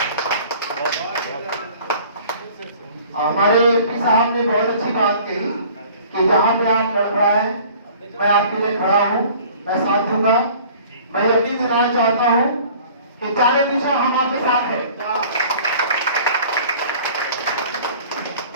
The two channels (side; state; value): both; inverted; correlation -0.49